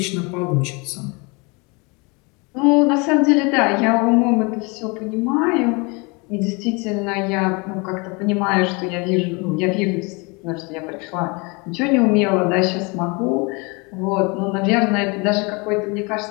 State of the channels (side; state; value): right; quieter; 28.9 dB